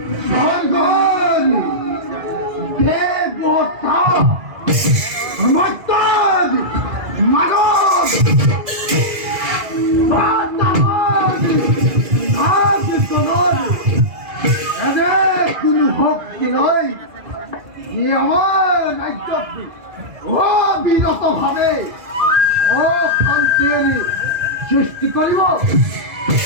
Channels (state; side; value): late; left; 2.0 ms